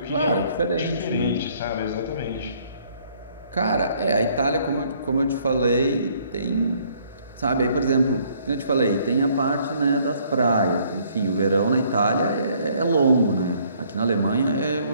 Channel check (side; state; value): both; inverted; correlation -0.63